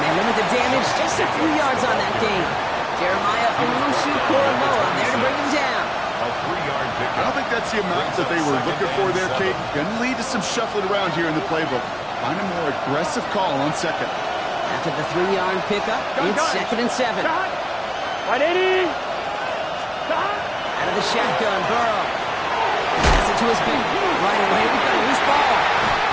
they limit the damage just a few yards on that game. Jeremiah Owusu-Koramoah there to bring him down. I don't think that's the amount that they were looking for there, Kate. Going to lead to some shuffling around here in the playbook. Find a more aggressive call on second. After the 3-yard pickup, it's 2nd and 7. Right, Eddie. Out of the shotgun, Burrow. Pass it to his feet. Right away, we've got a loose ball.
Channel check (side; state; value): both; identical; correlation 1.00